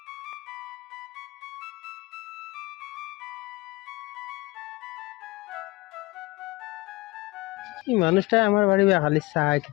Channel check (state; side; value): quieter; right; 21.6 dB